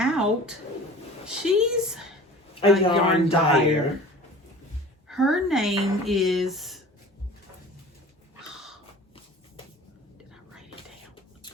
she's a yarn dyer. Her name is... Did I write it down?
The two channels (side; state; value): both; normal; correlation 0.42